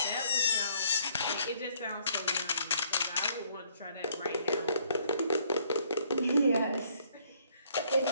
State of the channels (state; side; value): inverted; both; correlation -0.66